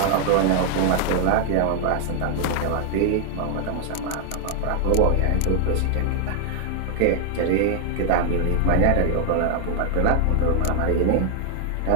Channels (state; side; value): different; both; correlation 0.00